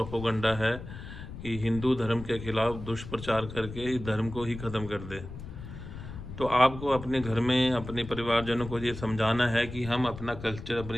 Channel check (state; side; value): noise; left; rumble, 11 dB below the sound